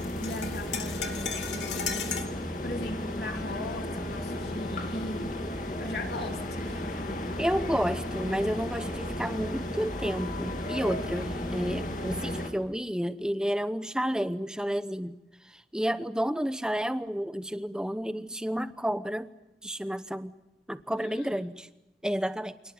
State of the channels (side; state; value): both; normal; correlation 0.82